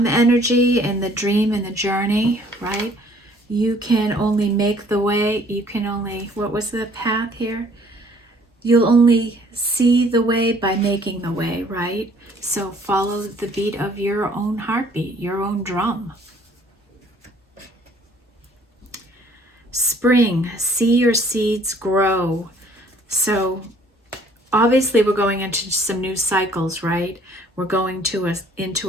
energy and the dream and the journey, right? You can only make the way. You can only, what was the path here? You'll only see the way by making the way, right? So follow the beat of your own heartbeat, your own drum. Spring, see your seeds grow. So obviously we're going into some new cycles, right? We're going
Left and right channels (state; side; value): normal; both; correlation 0.58